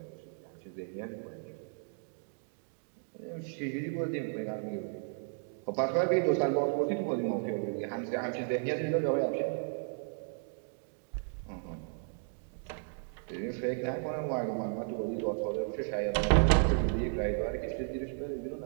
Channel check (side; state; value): left; silent; 55 dB below the other